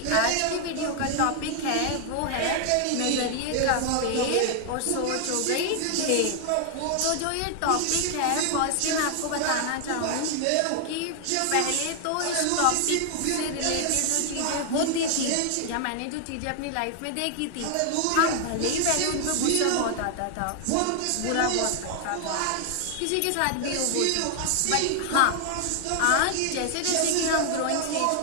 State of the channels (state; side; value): different; both; correlation 0.00